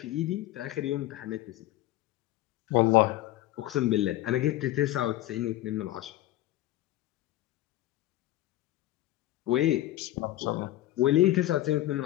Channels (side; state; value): right; quieter; 15.4 dB